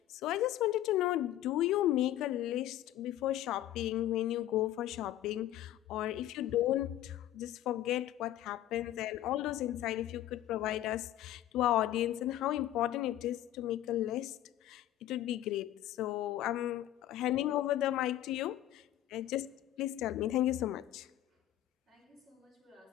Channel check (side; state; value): right; quieter; 13.2 dB